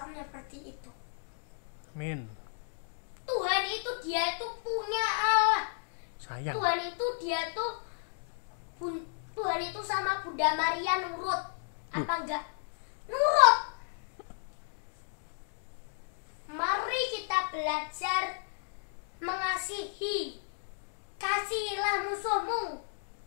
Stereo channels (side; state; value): right; silent; digital silence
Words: Amin. Tuhan itu dia itu punya Allah. Sayang. Tuhan itu sama Bunda Maria nurut. Apa enggak? Nurut. Mari kita belajar mengasihi. Kasihilah musuhmu,